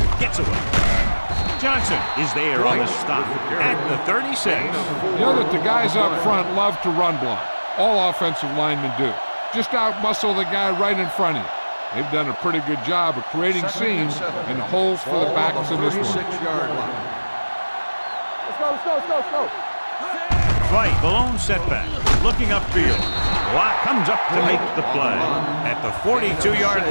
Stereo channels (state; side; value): inverted; both; correlation -1.00